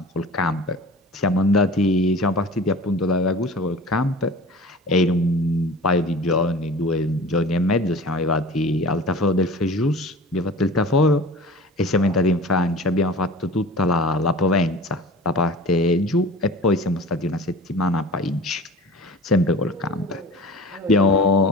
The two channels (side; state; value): both; normal; correlation 0.40